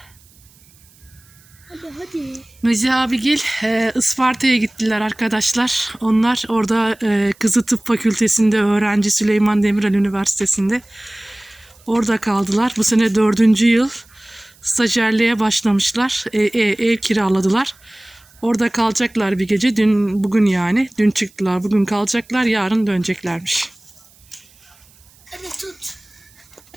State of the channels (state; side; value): noise; right; hiss, 29 dB below the sound